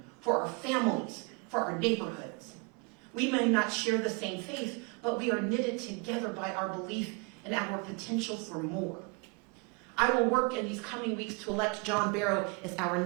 for our families, for our neighborhoods. We may not share the same faith, but we are knitted together by our belief in our potential for more. I will work in these coming weeks to elect John Barrow as our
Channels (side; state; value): left; quieter; 32.7 dB